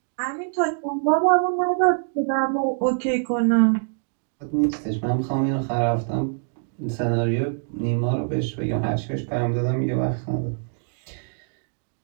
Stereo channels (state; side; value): silent; left; digital silence